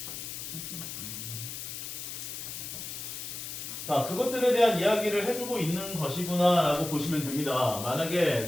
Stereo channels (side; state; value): left; noise; hiss, 7 dB below the sound